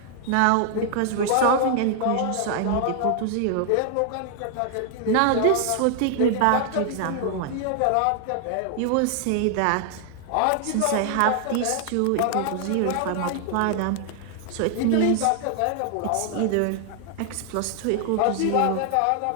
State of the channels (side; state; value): both; different; correlation 0.00